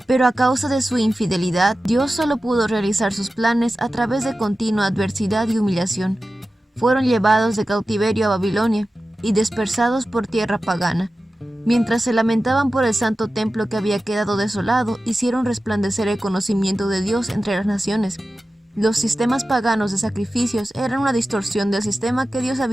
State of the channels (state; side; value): normal; both; correlation 0.94